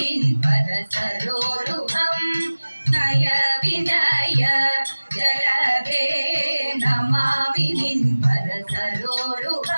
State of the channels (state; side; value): inverted; both; correlation -1.00